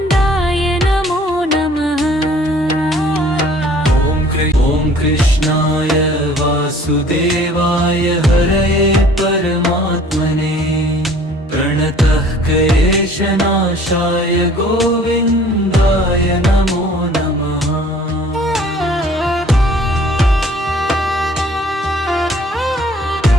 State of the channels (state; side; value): normal; both; correlation 0.53